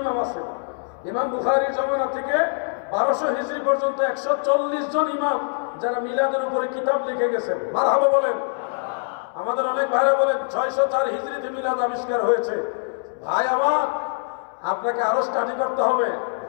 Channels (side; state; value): right; silent; 61 dB below the other